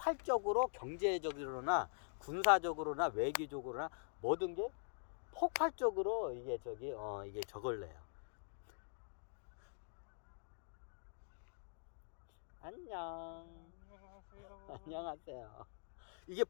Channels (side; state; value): right; silent; digital silence